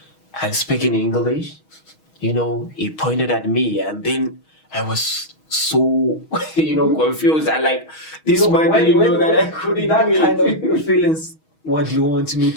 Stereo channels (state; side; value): late; right; 6.3 ms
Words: and speak in English. He pointed at me, and then I was so, confused. I this man didn't know that I couldn't that do it. Kind of feelings. What do you want me